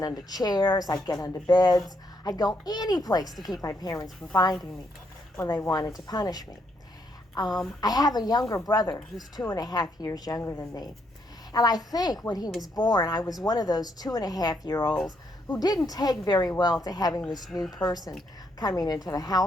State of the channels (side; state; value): both; normal; correlation 0.75